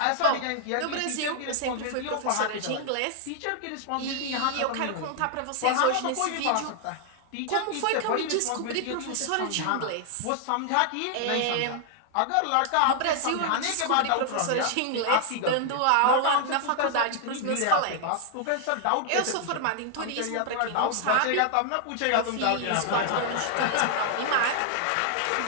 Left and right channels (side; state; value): both; different; correlation 0.00